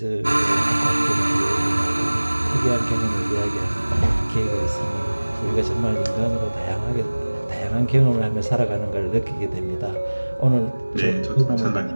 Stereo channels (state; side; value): inverted; both; correlation -1.00